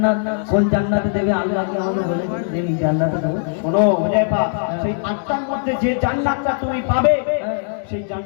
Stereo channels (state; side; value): silent; right; digital silence